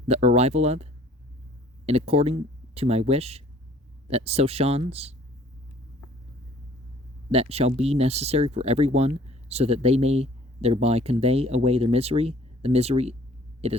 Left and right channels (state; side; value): normal; both; correlation 0.55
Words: the arrival of, and according to my wish, that so shons, that shall be necessary for every one, so that they may thereby convey away their misery, the misery it